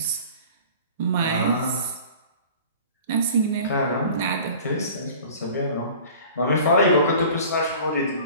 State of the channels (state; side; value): inverted; both; correlation -0.44